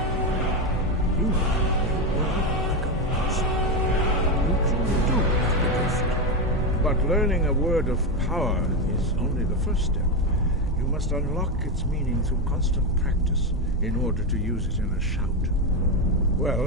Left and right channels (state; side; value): normal; both; correlation 0.11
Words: You have a word like a monster. You truly do have the gift. But learning a word of power is only the first step. You must unlock its meaning through constant practice in order to use it in a shout. Well,